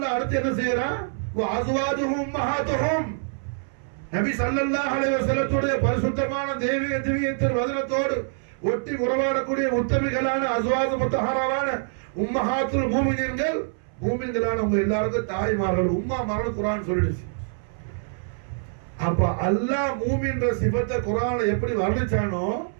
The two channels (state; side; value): silent; left; 62 dB below the other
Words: அடுத்து என்ன செய்யறான்? வ அஸ்வாஜுஹும் உம்மஹாத்துஹும். நபி ஸல்லல்லாஹு அலைஹி வஸல்லத்துடைய பரிசுத்தமான தெய்வீக திவ்யத்தின் வதனத்தோடு ஒட்டி உறவாடக்கூடிய உத்தமிகளான அஸ்வாஜ் முத்தஹராவான உம்மஹாத்துல் மூமினீன்கள், மூமின்களான உங்க எல்லாருக்கும் தாய்மார்கள், உம்மாமார்கள் குர்ஆன் சொல்லிடுச்சு. அப்ப அல்லாஹ் மூமின்ற சிபத்தை குர்ஆன்ல எப்படி வர்ணிச்சானோ